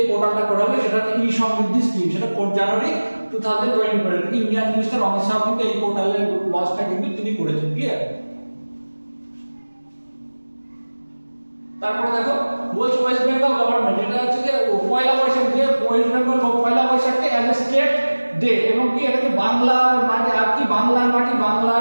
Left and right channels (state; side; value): inverted; both; correlation -1.00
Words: পোর্টালটা করা হবে। সেটা হচ্ছে ই সমৃদ্ধি স্কিম, সেটা 4 জানুয়ারি 2024 ইন্ডিয়ান মিনিস্টার অমিত শাহ কিন্তু এই পোর্টালের লঞ্চটা কিন্তু তিনি করেছেন, ক্লিয়ার। তারপরে দেখো বলছে ওয়েস্ট বেঙ্গল গভর্নমেন্ট, এটা হচ্ছে যে পয়লা বৈশাখ, যে ওয়েস্ট বেঙ্গল পয়লা বৈশাখকে অ্যাজ এ স্টেট ডে, এবং কি এটাকে বাংলার মাটি আর কি বাংলার মাটি